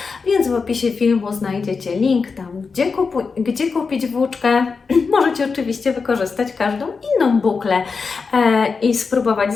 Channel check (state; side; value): quieter; right; 4.9 dB